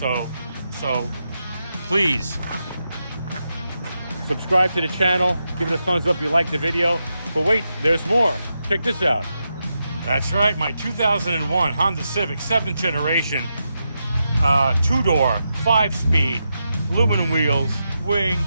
please subscribe to the channel. Give it a thumbs up if you like the video. But wait, there's more. Check this out. That's right, my 2001 Honda Civic 7th generation, 2-door, 5-speed, aluminum wheels, wing.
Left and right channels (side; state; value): both; inverted; correlation -0.86